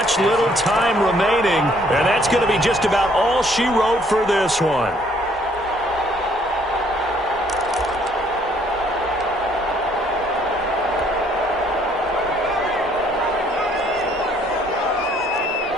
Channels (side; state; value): both; normal; correlation 0.64